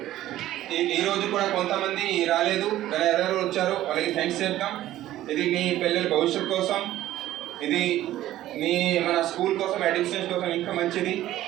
ఈరోజు కూడా కొంతమంది రాలేదు, కానీ ఎవరెవరు వచ్చారు వాళ్ళకి థ్యాంక్స్ చెప్తాం. ఇది మీ పిల్లల భవిష్యత్తు కోసం, ఇది మన స్కూల్ కోసం, అడ్మినిస్ట్రేషన్ కోసం ఇంకా మంచిది.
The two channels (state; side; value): quieter; left; 14.0 dB